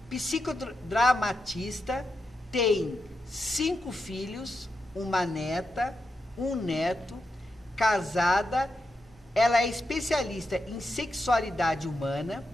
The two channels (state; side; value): normal; both; correlation 0.86